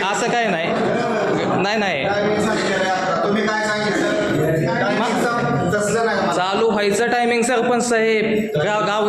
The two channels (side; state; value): both; identical; correlation 1.00